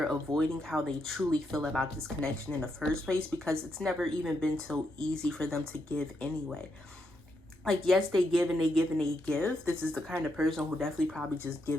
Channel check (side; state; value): both; normal; correlation 0.80